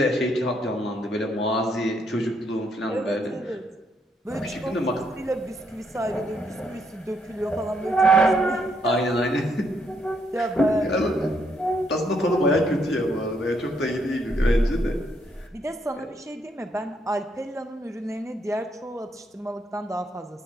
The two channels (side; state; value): both; normal; correlation 0.74